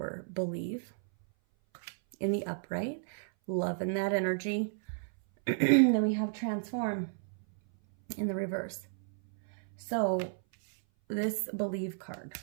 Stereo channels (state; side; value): silent; left; 56 dB below the other